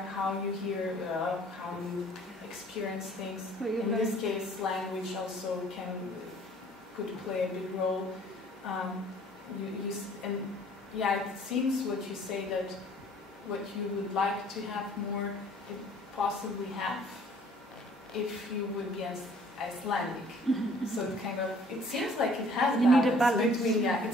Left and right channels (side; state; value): both; normal; correlation 0.55